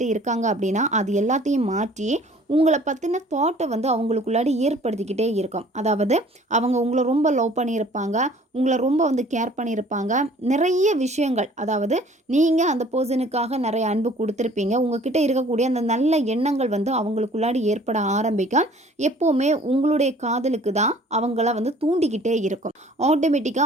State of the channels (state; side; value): normal; both; correlation 0.52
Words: இருக்காங்க அப்படின்னா அது எல்லாத்தையும் மாற்றி உங்களை பற்றின தாட்டை வந்து அவங்களுக்குள்ளாடி ஏற்படுத்திக்கிட்டே இருக்கும். அதாவது அவங்க உங்களை ரொம்ப லவ் பண்ணியிருப்பாங்க, உங்களை ரொம்ப வந்து கேர் பண்ணியிருப்பாங்க. நிறைய விஷயங்கள், அதாவது நீங்கள் அந்த பர்சனுக்காக நிறைய அன்பு கொடுத்துருப்பீங்க. உங்ககிட்ட இருக்கக்கூடிய அந்த நல்ல எண்ணங்கள் வந்து அவங்களுக்குள்ளாடி ஏற்பட ஆரம்பிக்கும். எப்போவுமே உங்களுடைய காதலுக்கு தான் அவங்கள வந்து தூண்டிக்கிட்டே இருக்கும்.